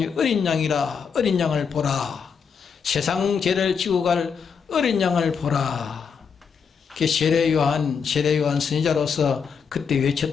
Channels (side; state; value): right; quieter; 6.3 dB